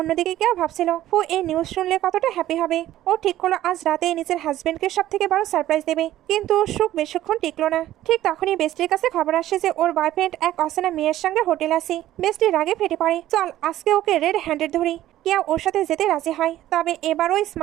কেউ ভাবছিল ফু এই নিউজ শুনলে কতটা হ্যাপি হবে। ও ঠিক করলো আজ রাতে নিজের হাজবেন্ডকে সব থেকে বড় সারপ্রাইজ দেবে। কিন্তু সুখ বেশিক্ষণ টিকলো না। ঠিক তখনই বেস্টির কাছে খবর আসে যে ওর বয়ফ্রেন্ড এক অচেনা মেয়ের সঙ্গে হোটেল আসে। বেস্টি রাগে ফেটে পড়ে, চল আজকে ওকে রেড হ্যান্ডেড ধরি। কেউ ওর সাথে যেতে রাজি হয়, তবে এবারও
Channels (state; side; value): quieter; left; 13.8 dB